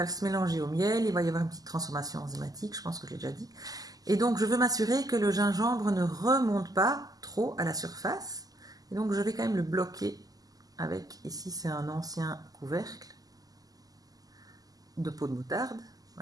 se mélanger au miel, il va y avoir une petite transformation enzymatique, je pense que je l'ai déjà dit. Et donc je veux m'assurer que le gingembre ne remonte pas trop à la surface. Et donc je vais quand même le bloquer avec, ici c'est un ancien couvercle de peau de moutarde,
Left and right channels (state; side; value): late; left; 0.17 ms